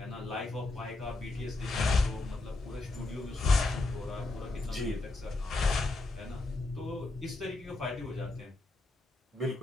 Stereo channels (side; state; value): right; quieter; 3.1 dB